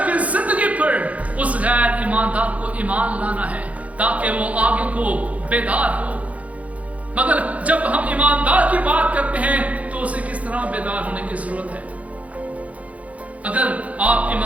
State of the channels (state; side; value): late; left; 0.067 ms